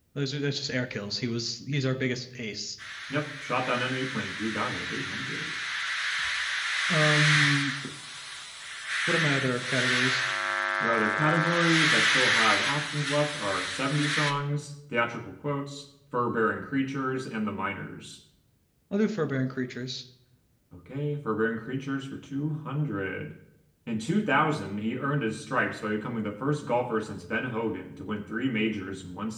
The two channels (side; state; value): both; identical; correlation 1.00